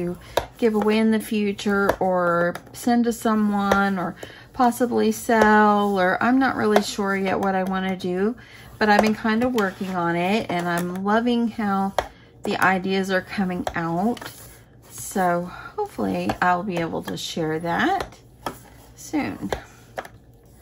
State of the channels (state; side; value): identical; both; correlation 1.00